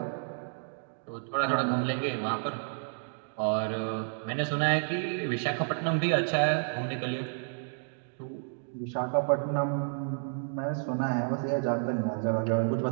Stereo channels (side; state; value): left; silent; digital silence